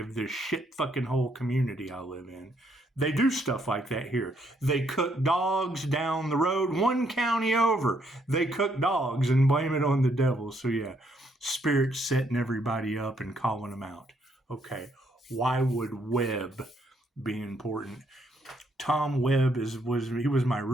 of this shit fucking whole community I live in. They do stuff like that here. They cook dogs down the road, one county over. They cook dogs and blame it on the devil. So yeah, spirit setting everybody up and calling them out. Okay, why would Webb be important? Tom Webb was my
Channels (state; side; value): normal; both; correlation 0.72